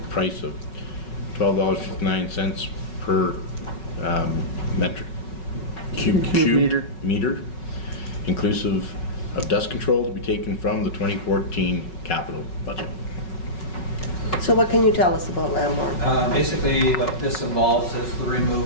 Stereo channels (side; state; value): right; late; 5.4 ms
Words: price of $12.59 per metric cube meter, inclusive of dust control, to be taken from the 2014 capital budget. So what can you tell us about Lambourne? Basically, what this involves is the